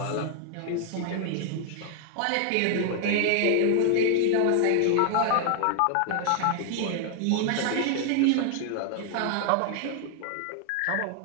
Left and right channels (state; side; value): different; both; correlation 0.00